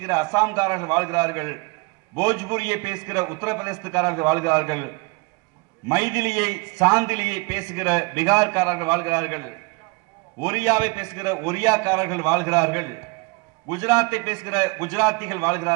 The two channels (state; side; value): quieter; left; 27.9 dB